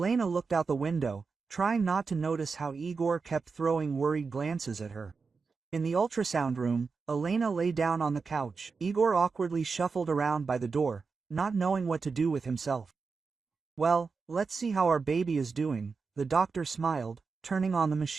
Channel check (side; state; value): left; quieter; 4.8 dB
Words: looked out the window, trying not to notice how Igor kept throwing worried glances at her. In the ultrasound room, Elena lay down on the couch. Igor awkwardly shuffled around by the door, not knowing what to do with himself. "Well, let's see how our baby is doing," the doctor smiled, turning on the